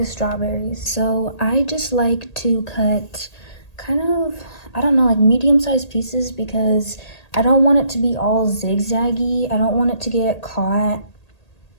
strawberries. So I just like to cut kind of, I don't know, like medium-sized pieces, because I don't want it to be all zigzaggy. I don't want it to get caught,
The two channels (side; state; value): right; late; 1.8 ms